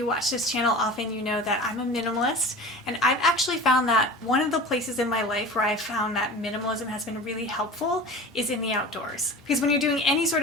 watch this channel often, you know that I'm a minimalist, and I've actually found that one of the places in my life where I've found that minimalism has been really helpful is in the outdoors. Because when you're doing any sort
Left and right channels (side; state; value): both; normal; correlation 0.36